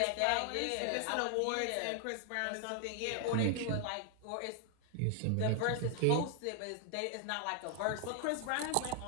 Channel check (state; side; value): different; both; correlation 0.00